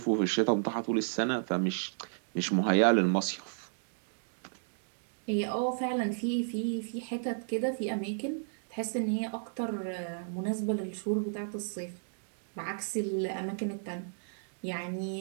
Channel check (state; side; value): silent; left; digital silence